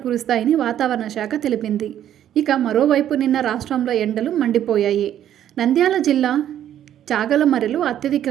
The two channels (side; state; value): left; quieter; 10.9 dB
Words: కురుస్తాయని వాతావరణ శాఖ తెలిపింది. ఇక మరోవైపు నిన్న రాష్ట్రంలో ఎండలు మండిపోయాయి. నంద్యాల జిల్లా చాగలమరిలో